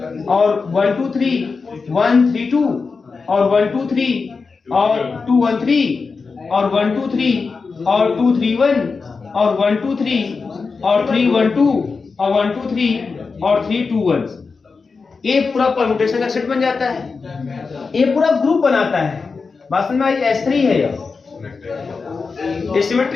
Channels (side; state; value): right; quieter; 4.7 dB